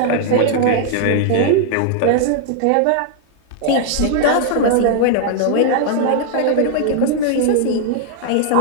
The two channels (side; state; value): both; different; correlation -0.01